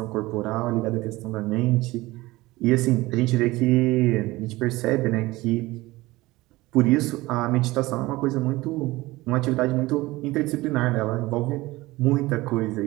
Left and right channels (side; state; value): left; quieter; 19.8 dB